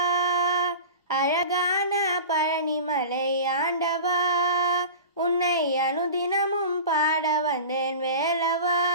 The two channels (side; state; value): both; inverted; correlation -0.35